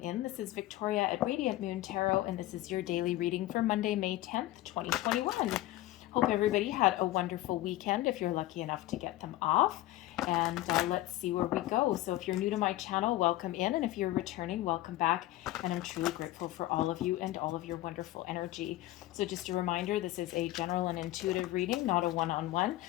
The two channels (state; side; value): quieter; right; 16.2 dB